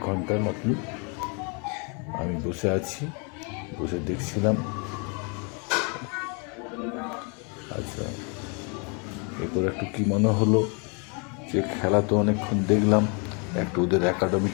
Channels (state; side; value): quieter; right; 34.9 dB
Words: ঘন্টার মতন। আমি বসে আছি, বসে দেখছিলাম। আচ্ছা, এরপর একটু কী মনে হলো যে খেলা তো অনেকক্ষণ দেখলাম, একটু ওদের